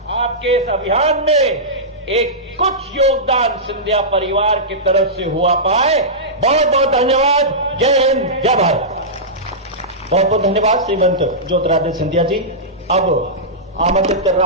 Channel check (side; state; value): both; normal; correlation -0.15